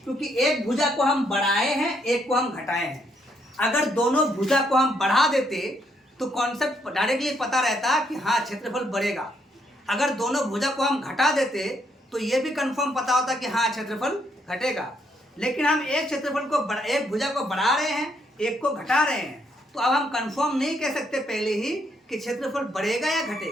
क्योंकि एक भुजा को हम बढ़ाए हैं, एक को हम घटाए हैं। अगर दोनों भुजा को हम बढ़ा देते तो कॉन्सेप्ट डायरेक्टली पता रहता कि हाँ क्षेत्रफल बढ़ेगा। अगर दोनों भुजा को हम घटा देते तो ये भी कंफर्म पता होता कि हाँ क्षेत्रफल घटेगा। लेकिन हम एक क्षेत्रफल को एक भुजा को बढ़ा रहे हैं, एक को घटा रहे हैं, तो अब हम कंफर्म नहीं कह सकते पहले ही कि क्षेत्रफल बढ़ेगा या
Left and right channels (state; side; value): normal; both; correlation 0.73